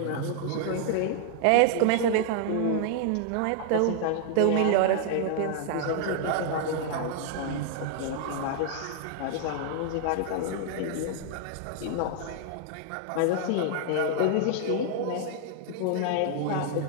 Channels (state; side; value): different; both; correlation -0.01